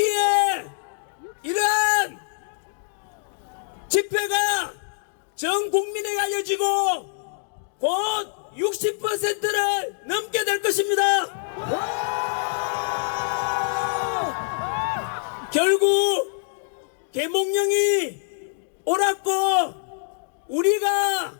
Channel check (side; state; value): right; silent; digital silence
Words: 이러한 집회가 전 국민에게 알려지고 곧 60%를 넘게 될 것입니다. 결국 계몽령이 옳았고 우리가